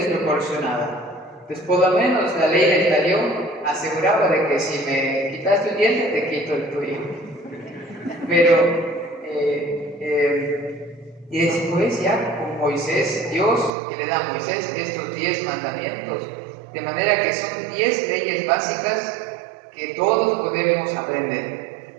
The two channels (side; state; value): left; drops out; at 13.7 s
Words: Entonces, por lo menos la ley del talión aseguraba de que si me quitaste un diente, te quito el tuyo. Pero, y después ya con Moisés, Dios que le da a Moisés estos 10 mandamientos, de manera que son 10 leyes básicas que todos podemos aprender.